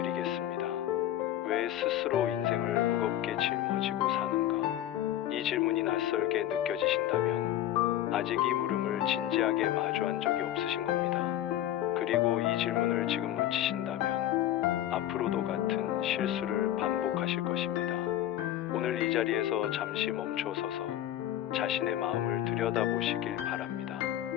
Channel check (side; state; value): right; quieter; 12.5 dB